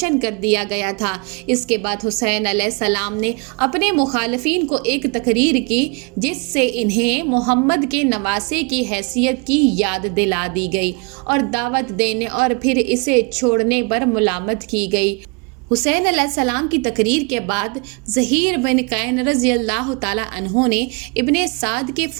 کر دیا گیا تھا۔ اس کے بعد حسین علیہ السلام نے اپنے مخالفین کو ایک تقریر کی جس سے انہیں محمد کے نواسے کی حیثیت کی یاد دلا دی گئی اور دعوت دینے اور پھر اسے چھوڑنے پر ملامت کی گئی۔ حسین علیہ السلام کی تقریر کے بعد زہیر بن قین رضی اللہ تعالیٰ عنہ نے ابن سعد کے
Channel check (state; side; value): quieter; left; 31.9 dB